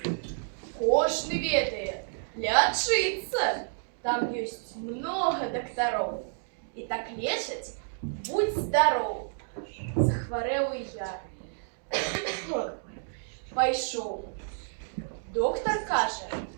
Кожный ведает, лечиться. Там есть много докторов. И так лечать, будь здоров. Захворел и я. Пойшов. Доктор каже,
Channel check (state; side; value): silent; left; digital silence